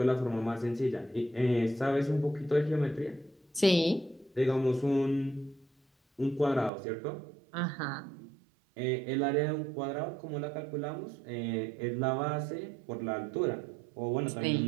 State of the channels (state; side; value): drops out; left; at 6.7 s